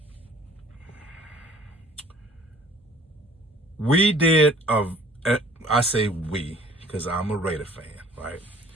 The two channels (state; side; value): normal; both; correlation 0.52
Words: We did I say we, because I'm a Raider fan, right?